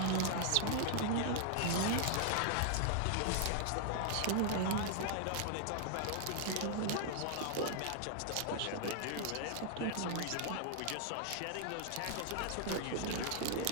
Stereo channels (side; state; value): both; different; correlation 0.00